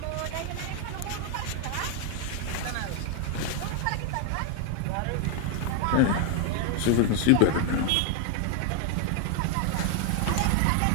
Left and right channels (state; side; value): different; both; correlation 0.01